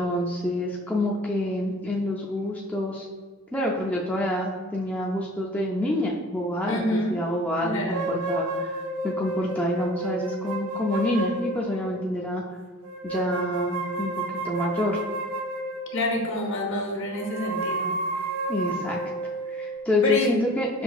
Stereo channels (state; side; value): normal; both; correlation 0.44